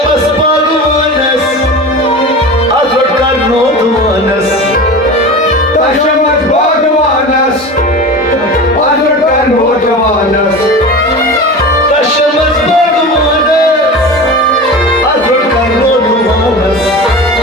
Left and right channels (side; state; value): both; normal; correlation 0.31